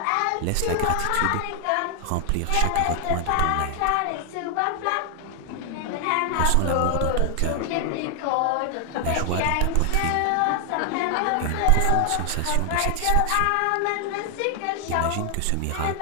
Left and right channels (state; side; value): different; both; correlation 0.00